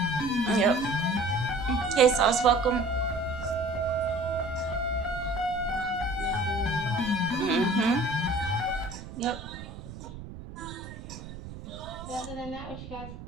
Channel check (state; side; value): noise; right; rumble, 12 dB below the sound